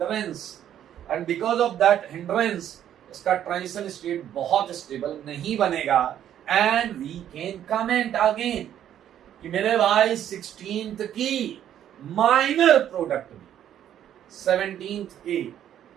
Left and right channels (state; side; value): quieter; left; 10.6 dB